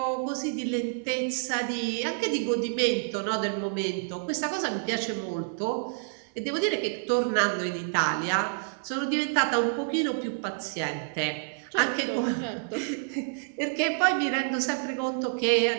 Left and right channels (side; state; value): left; silent; 59 dB below the other